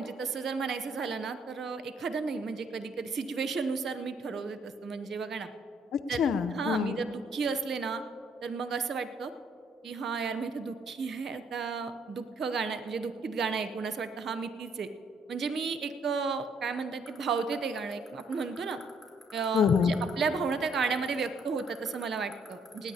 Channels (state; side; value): normal; both; correlation 0.67